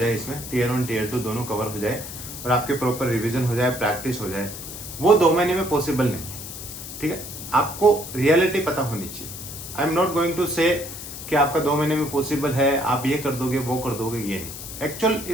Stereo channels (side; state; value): left; noise; hiss, 10 dB below the sound